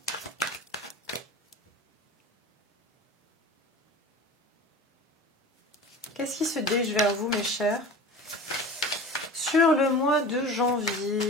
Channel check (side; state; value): both; normal; correlation 0.36